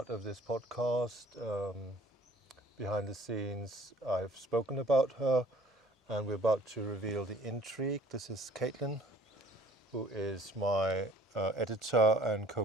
of this podcast. Behind the scenes, I've spoken about her, and we're about to reveal the intrigue. This is Caitlin, who is my editor and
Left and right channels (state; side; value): normal; both; correlation 0.55